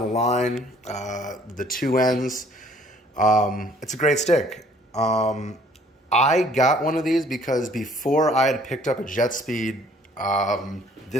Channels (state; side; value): normal; both; correlation 0.58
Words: line, the 2Ns, it's a great stick. I got one of these because before I had picked up a Jetspeed,